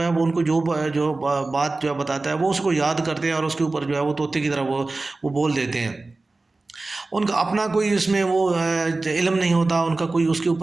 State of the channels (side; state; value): left; quieter; 3.3 dB